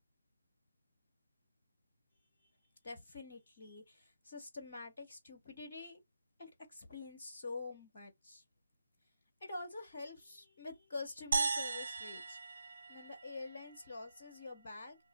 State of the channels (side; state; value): both; inverted; correlation -0.85